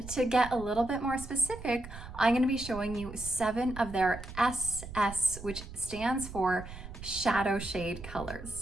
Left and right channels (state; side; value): noise; right; rumble, 12 dB below the sound